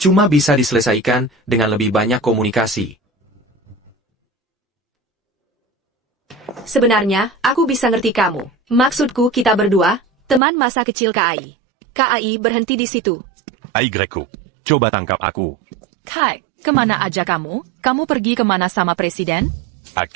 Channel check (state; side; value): drops out; left; at 10.4 s